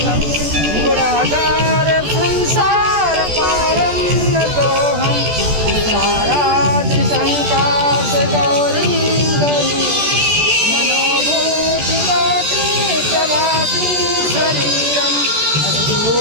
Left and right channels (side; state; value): left; late; 14 ms